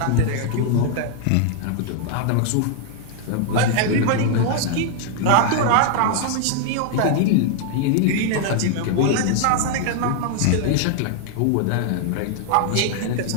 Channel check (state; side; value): different; both; correlation 0.00